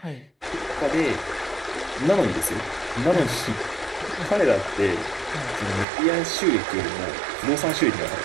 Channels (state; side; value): drops out; left; at 5.9 s